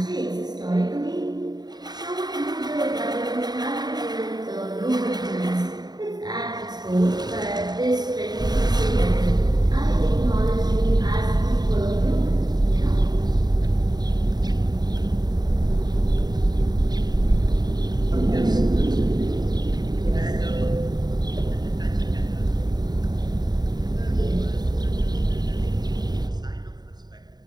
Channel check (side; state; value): left; late; 0.20 ms